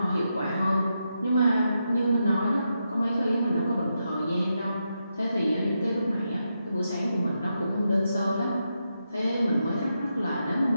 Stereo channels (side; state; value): both; inverted; correlation -0.85